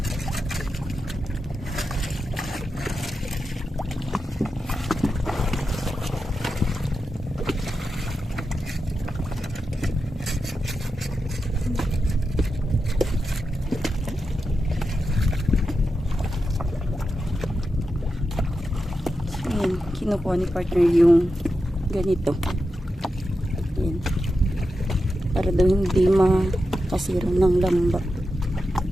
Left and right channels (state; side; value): normal; both; correlation 0.89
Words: Ayan, kinukuha ni partner yung ganito. Ayan. Para daw hindi makasira ng lamba.